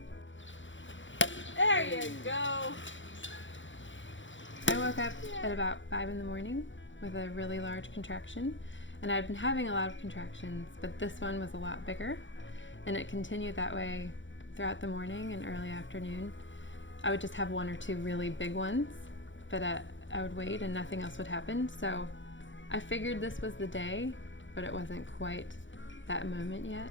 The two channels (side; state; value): right; late; 0.55 ms